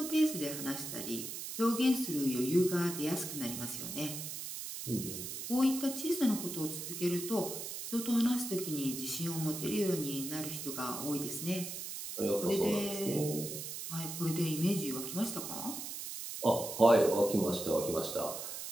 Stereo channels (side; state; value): right; noise; hiss, 7 dB below the sound